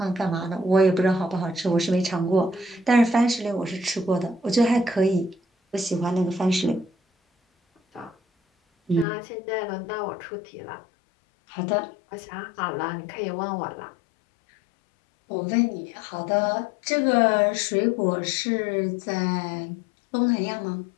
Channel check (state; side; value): drops out; right; at 9.1 s